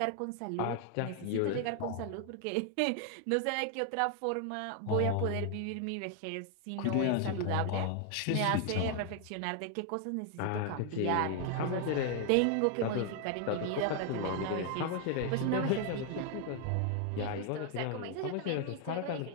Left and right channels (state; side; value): different; both; correlation 0.00